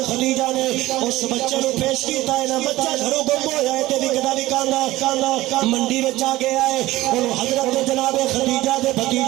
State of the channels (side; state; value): left; quieter; 17.3 dB